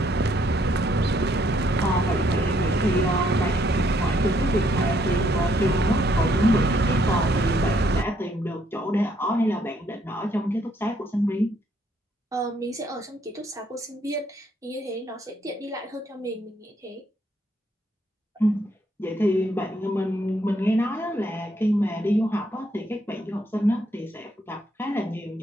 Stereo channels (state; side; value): normal; both; correlation 0.70